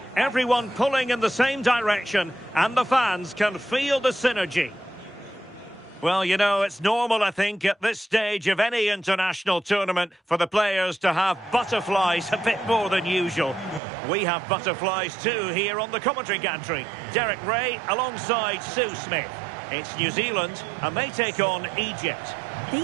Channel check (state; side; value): drops out; left; at 13.8 s